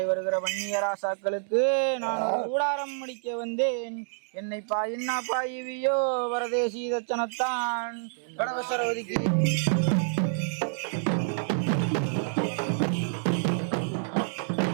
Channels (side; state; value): left; silent; digital silence